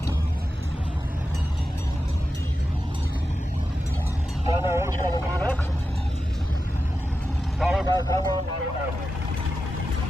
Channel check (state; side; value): normal; both; correlation 0.91